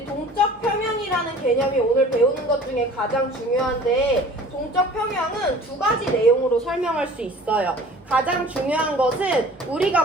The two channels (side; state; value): both; normal; correlation 0.47